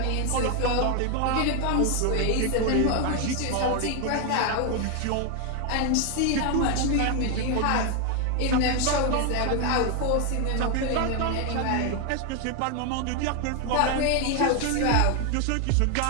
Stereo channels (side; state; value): both; different; correlation 0.01